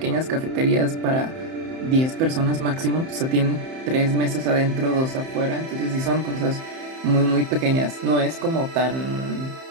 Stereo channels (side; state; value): left; late; 31 ms